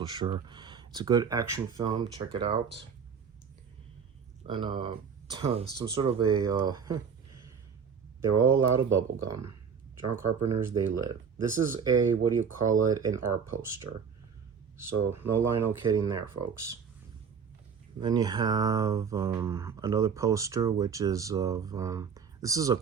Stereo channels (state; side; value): quieter; left; 6.6 dB